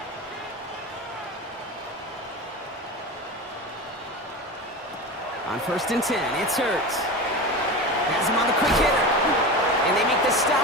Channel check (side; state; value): both; normal; correlation 0.27